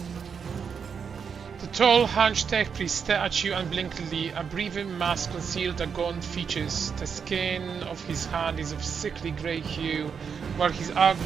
Tall, hunched tech priest stare at you unblinkingly. A breathing mask concealed the gaunt features. The skin of his hand is of sickly grey hue, while his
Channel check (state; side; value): quieter; left; 6.5 dB